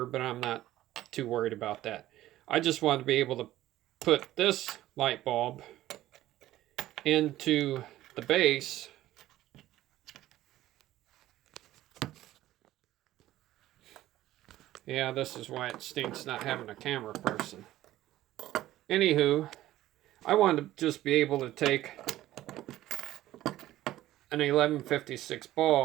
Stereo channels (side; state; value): left; quieter; 14.7 dB